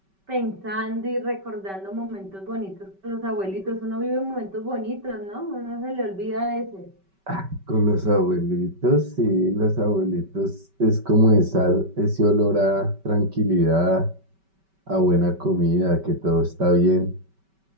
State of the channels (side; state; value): left; late; 5.2 ms